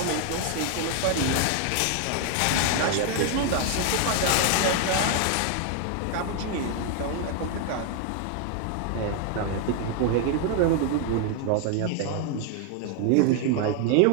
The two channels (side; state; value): both; different; correlation 0.00